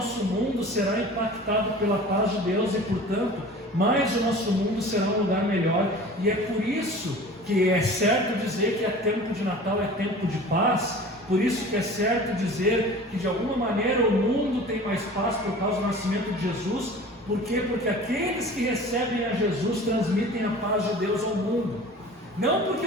mundo será impactado pela paz de Deus e, portanto, mais o nosso mundo será um lugar melhor. E é por isso que é certo dizer que é tempo de Natal, é tempo de paz. Por isso que é certo dizer que de alguma maneira o mundo tem mais paz por causa do nascimento de Jesus. Por quê? Porque aqueles que recebem a Jesus transmitem a paz de Deus ao mundo. Não porque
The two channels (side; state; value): both; normal; correlation 0.41